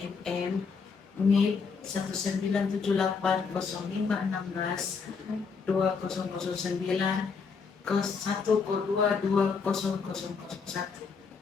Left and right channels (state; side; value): quieter; right; 5.3 dB